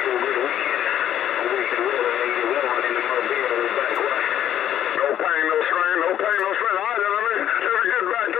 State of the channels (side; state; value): right; quieter; 10.9 dB